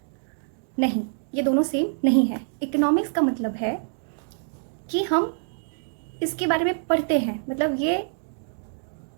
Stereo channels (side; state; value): left; silent; digital silence